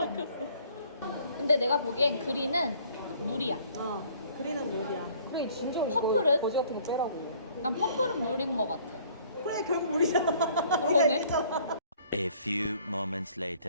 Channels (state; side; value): inverted; both; correlation -0.57